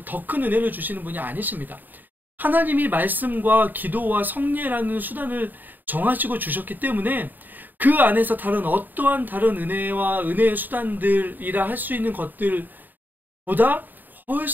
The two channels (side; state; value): left; late; 0.089 ms